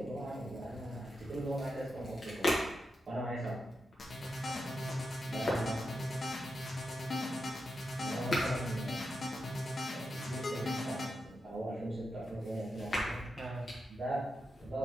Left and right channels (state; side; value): normal; both; correlation 0.87